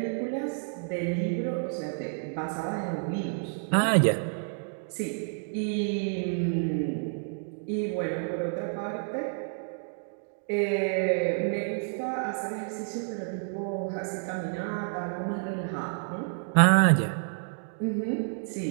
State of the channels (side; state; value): left; silent; digital silence